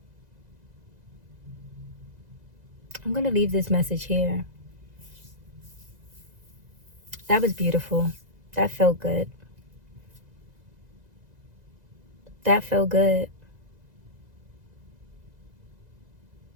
I'm going to leave this message here. That was beautiful. That felt good. That felt good.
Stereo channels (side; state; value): left; late; 2.0 ms